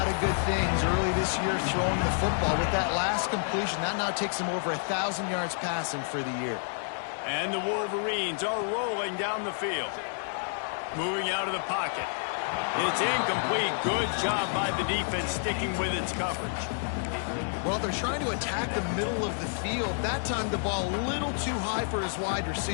of good things early this year throwing the football. With that last completion, that now takes him over 1,000 yards passing for the year. And the Wolverines are rolling down the field. Moving out of the pocket. It's incomplete. Good job by the defense sticking with its coverage. Well, they're trying to attack the middle of the field. That time the ball a little too high for his wide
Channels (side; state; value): right; silent; digital silence